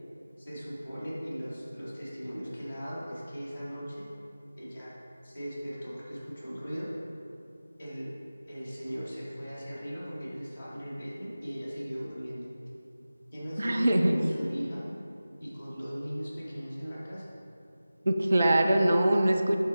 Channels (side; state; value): both; inverted; correlation -0.95